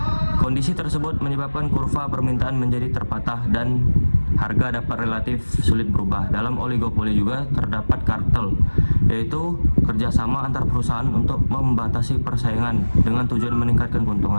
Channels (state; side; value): inverted; both; correlation -1.00